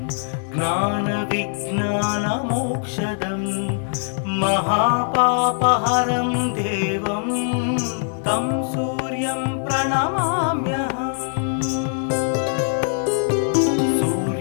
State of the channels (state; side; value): silent; right; 62 dB below the other